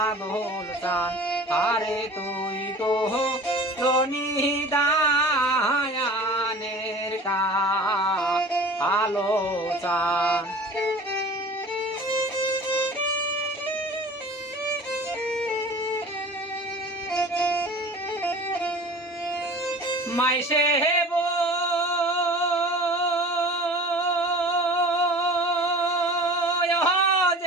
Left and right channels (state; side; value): normal; both; correlation 0.41